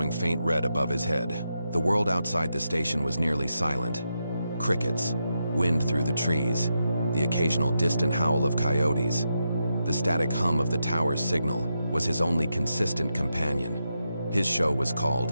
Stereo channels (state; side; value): inverted; both; correlation -0.85